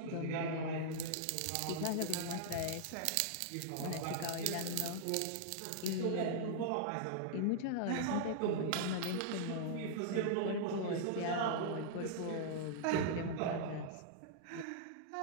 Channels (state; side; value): different; both; correlation -0.01